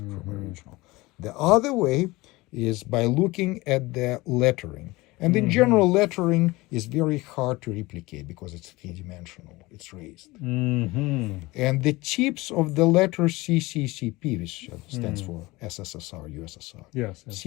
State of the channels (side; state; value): right; quieter; 21.2 dB